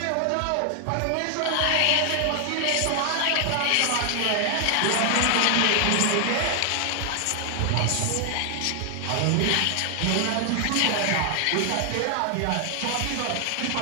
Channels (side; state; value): both; different; correlation 0.00